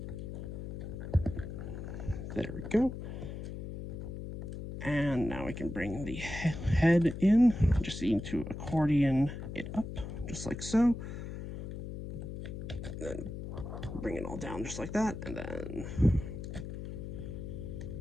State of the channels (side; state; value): left; noise; hum, 8 dB below the sound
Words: There we go. And now we can bring the head in. Just need to accordion it up, just like so. Then bring it all down just like that, and then